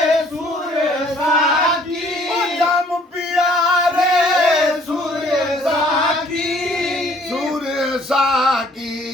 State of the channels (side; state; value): both; normal; correlation 0.59